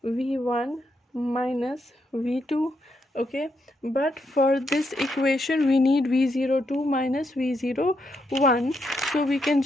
V1 minus V2. Okay, but for this equation we need V02 minus V01, so we can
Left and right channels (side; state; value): both; normal; correlation 0.79